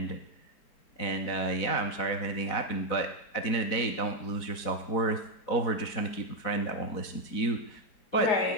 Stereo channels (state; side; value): late; right; 4.1 ms